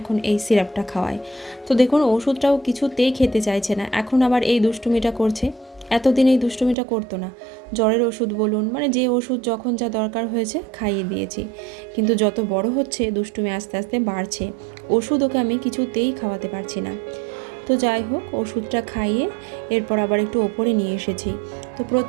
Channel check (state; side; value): drops out; left; at 6.8 s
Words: এই সিরাপটা খাওয়াই। তো দেখুন ওষুধটাও কিছুতেই খেতে চাইছে না, এখন আবার এই দুষ্টুমিটা করছে। এতদিন এই দুষ্টুমিটা করতো না। জ্বরের ওষুধ বলুন, মানে যে ওষুধ যখন যা দরকার হয়েছে খাইয়ে দিয়েছি, কিন্তু যত বড় হচ্ছে দুষ্টুমি আস্তে আস্তে বাড়ছে। ওষুধ ওকে আমি কিছুতেই খাওয়াতে পারছি না। তো যাই হোক, ওষুধটা খাইয়ে এরপর আবার একটু ওপরে নিয়ে এসেছি। তো